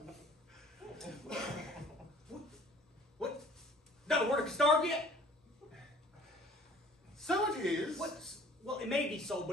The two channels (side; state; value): both; normal; correlation 0.51